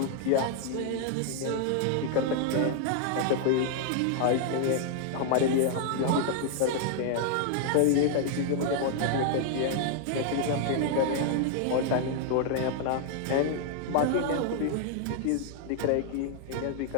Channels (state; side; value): different; both; correlation 0.00